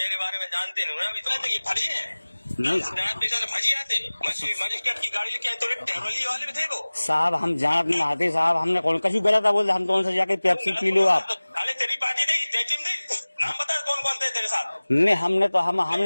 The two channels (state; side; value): inverted; both; correlation -1.00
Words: बारे में जानते नहीं ना, अभी तो ये फर्जी है नहीं फर्जी आते। मजिस्ट्रेट की गाड़ी लेके तो टेरोली वाले भी थे वो साहब। हम जानत नहीं आते साहब, हमने कौन कभी गलत बोल, हम तो उनसे जाके पेप्सी पी लो आप। अरे तेरी पार्टी थी नाम बता कौन कौन थे तेरे साथ? नहीं हमने तो